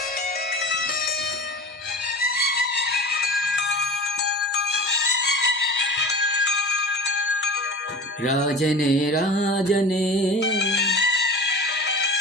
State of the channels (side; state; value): both; normal; correlation 0.34